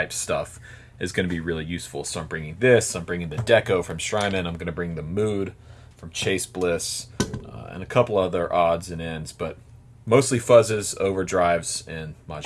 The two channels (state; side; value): identical; both; correlation 1.00